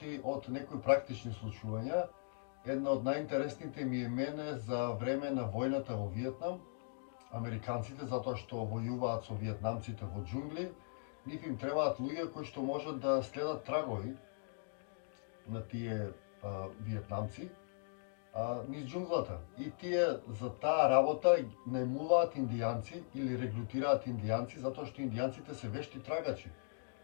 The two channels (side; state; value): right; silent; digital silence